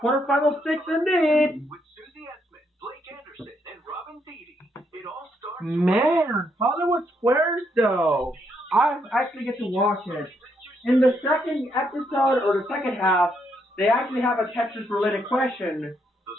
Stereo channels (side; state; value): both; normal; correlation 0.76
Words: quarterfinal six indeed. With Susie Essman, Blake Anderson, and Robin Thede. It all starts. Man, Hollywood Squares though. I actually get to watch it. In the second episode or the second half, they actually have a Tetris related question.